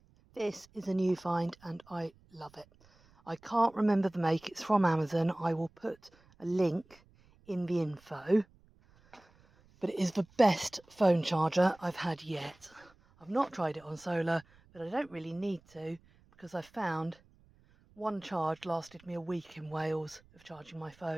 This is a new find and I love it. I can't remember the make. It's from Amazon. I will put a link in the info, but it is the best phone charger I've had yet. I've not tried it on solar, but I don't really need to, because I found one charge lasted me a week in Wales of charging my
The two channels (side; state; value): right; noise; rumble, 29 dB below the sound